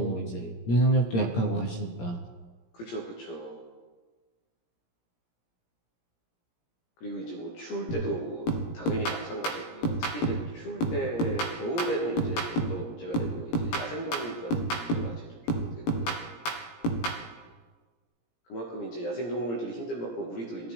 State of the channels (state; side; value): late; right; 17 ms